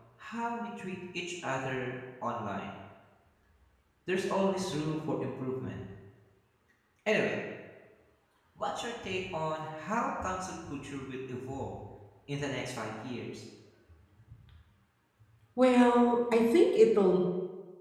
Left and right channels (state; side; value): identical; both; correlation 1.00